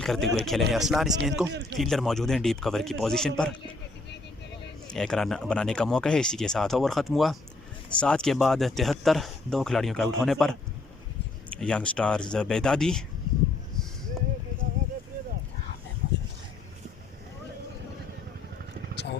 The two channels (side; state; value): right; quieter; 3.4 dB